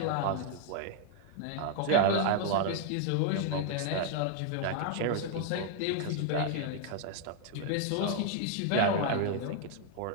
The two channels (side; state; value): both; different; correlation 0.00